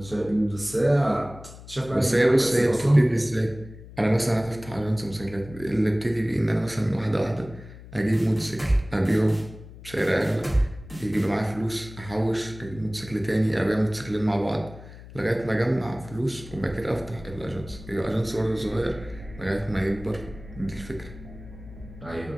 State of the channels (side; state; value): left; noise; hum, 17 dB below the sound